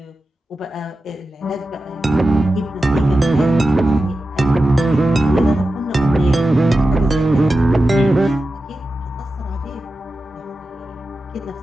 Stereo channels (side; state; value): both; normal; correlation 0.92